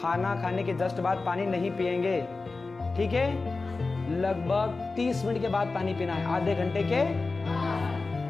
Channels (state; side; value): quieter; right; 3.7 dB